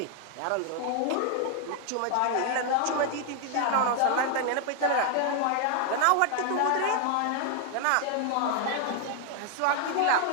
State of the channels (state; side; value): different; both; correlation 0.00